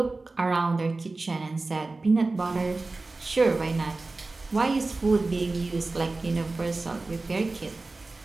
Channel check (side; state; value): left; quieter; 3.4 dB